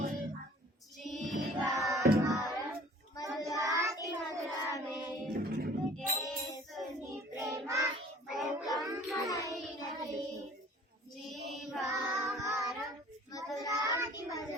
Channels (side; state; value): both; normal; correlation 0.50